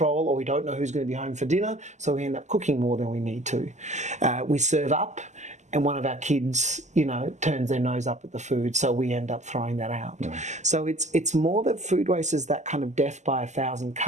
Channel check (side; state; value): left; late; 0.34 ms